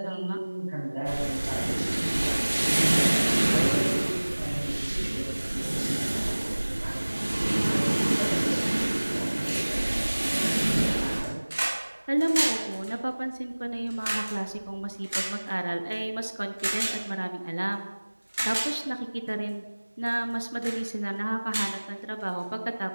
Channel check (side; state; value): both; inverted; correlation -1.00